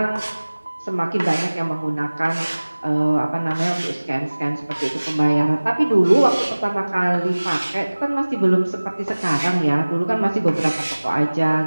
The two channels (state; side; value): inverted; both; correlation -1.00